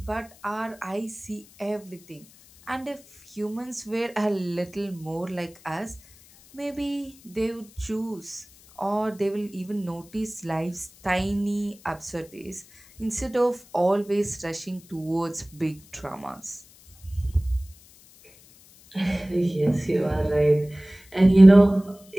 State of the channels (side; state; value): left; noise; hiss, 25 dB below the sound